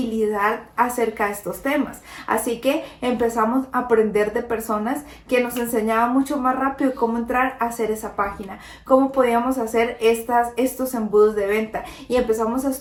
acerca de estos temas. Así que empezamos a aprender de personas que nos enseñaban mucho más rápido cómo entrar a hacer esa página, cómo podíamos hacer estos embudos de venta, y empezamos a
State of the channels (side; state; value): both; identical; correlation 1.00